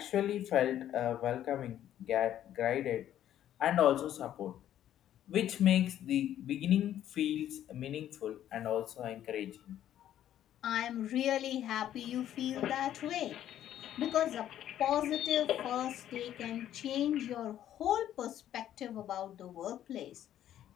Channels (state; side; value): quieter; right; 11.5 dB